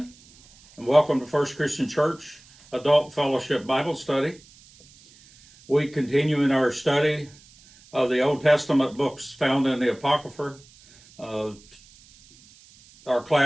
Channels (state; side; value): noise; right; hiss, 26 dB below the sound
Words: and welcome to First Christian Church Adult Fellowship Bible Study. We continue in our study of the Old Testament books found in the Apocrypha. Our